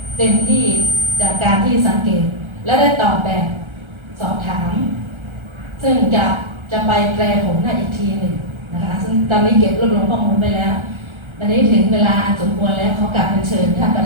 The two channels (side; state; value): left; late; 1.3 ms